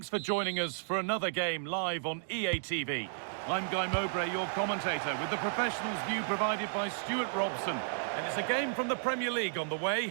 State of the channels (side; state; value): left; silent; digital silence